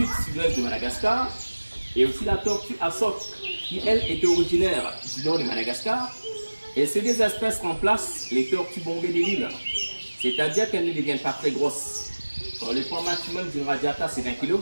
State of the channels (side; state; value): both; inverted; correlation -1.00